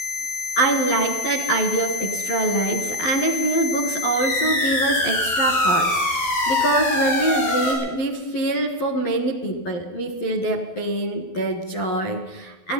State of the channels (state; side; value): late; right; 12 ms